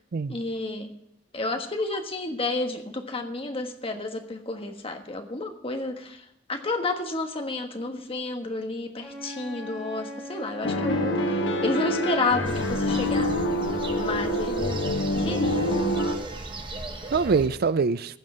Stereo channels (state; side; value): normal; both; correlation 0.26